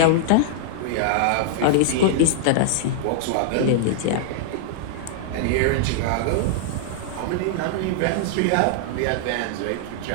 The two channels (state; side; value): different; both; correlation -0.01